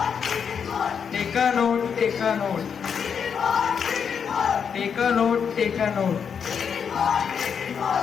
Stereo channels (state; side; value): quieter; right; 7.0 dB